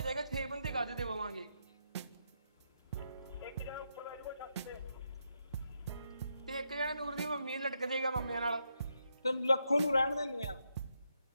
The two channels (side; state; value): both; inverted; correlation -0.81